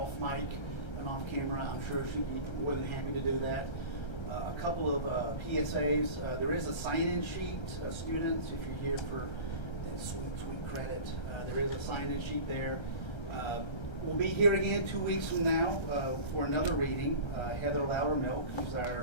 mic and off camera, I'm sure she'd be more than happy to do that. A couple of PSAs. There is a sign-in sheet, students, if you're here for that sweet credit. There is a sign-in sheet there. We'll be here again 2 weeks from now for another reading. Heather Loudermilk, who's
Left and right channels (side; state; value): right; late; 1.3 ms